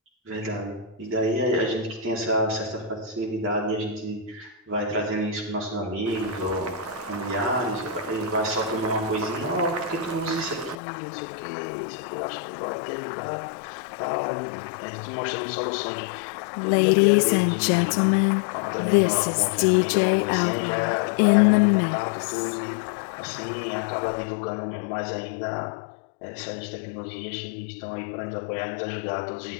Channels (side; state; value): right; drops out; at 10.8 s